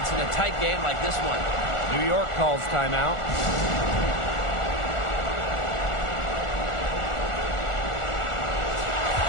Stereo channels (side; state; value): right; late; 1.4 ms